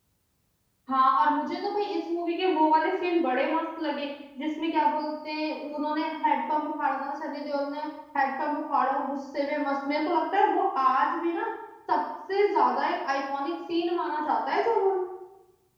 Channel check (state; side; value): identical; both; correlation 1.00